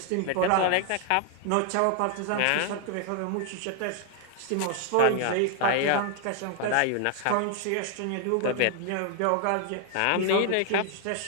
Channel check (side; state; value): both; different; correlation 0.00